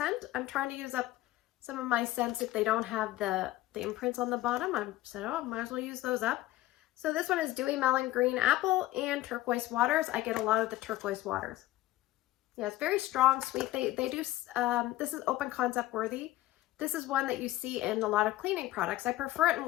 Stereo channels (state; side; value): quieter; right; 16.3 dB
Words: I'm trying to use up some of my scents if they don't have the imprints on the bottom. I said, oh, might as well use those up. So this one is Dewy Melon Green Apple and Turquoise Waters. I get a lot of the Turquoise Waters. Yeah, it's very strong, sweet. They do, this is open concept worthy. This is one that you see in a lot of cleaning products. I prefer it in